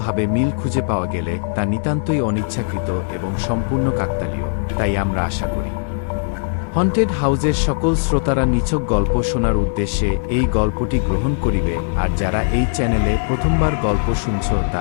মিল খুঁজে পাওয়া গেলে তা নিতান্তই অনিচ্ছাকৃত এবং সম্পূর্ণ কাকতালীয়। তাই আমরা আশা করি হন্টেড হাউসের সকল শ্রোতারা নিছক গল্প শোনার উদ্দেশ্যে এই গল্পটি গ্রহণ করিবে। আর যারা এই চ্যানেলে প্রথমবার গল্প শুনছ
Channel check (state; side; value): silent; right; 64 dB below the other